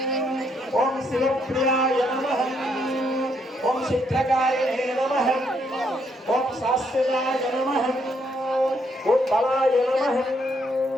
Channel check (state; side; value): normal; both; correlation 0.73